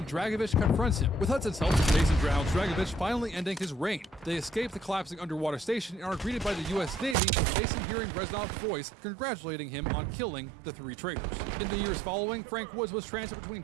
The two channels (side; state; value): left; drops out; at 7.2 s